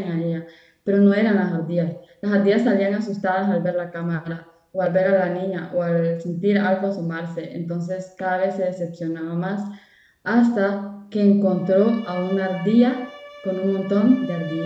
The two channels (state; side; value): identical; both; correlation 1.00